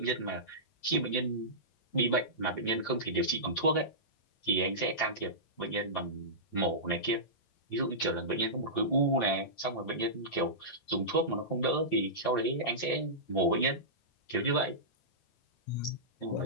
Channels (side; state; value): right; late; 9.1 ms